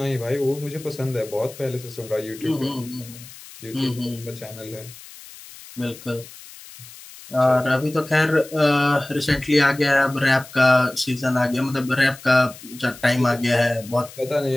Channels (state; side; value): noise; left; hiss, 18 dB below the sound